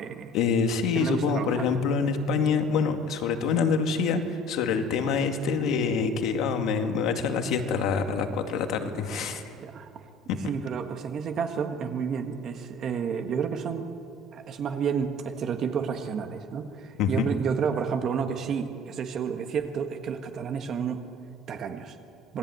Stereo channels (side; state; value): both; normal; correlation 0.47